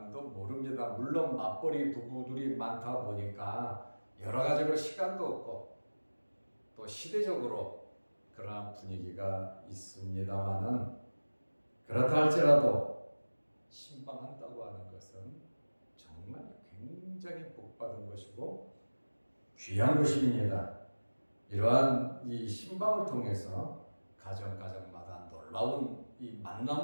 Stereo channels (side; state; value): both; inverted; correlation -1.00